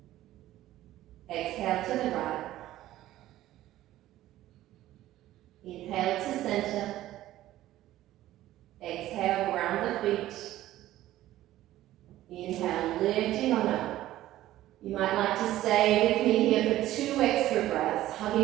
Exhale to the right. Inhale to center. Exhale, ground the feet. Inhale, lifting on up. You might like to stay with me here for 2 extra breaths,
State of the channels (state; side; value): quieter; left; 14.5 dB